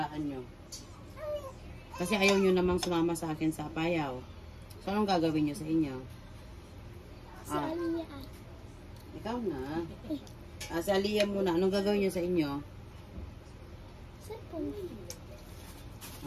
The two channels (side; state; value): both; identical; correlation 1.00